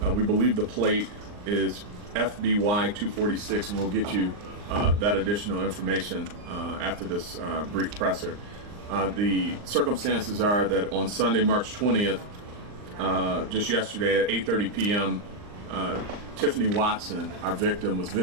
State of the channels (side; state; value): left; late; 39 ms